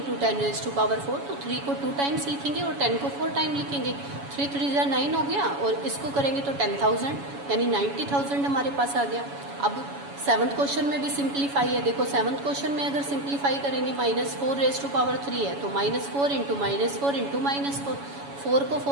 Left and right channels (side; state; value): left; late; 7.1 ms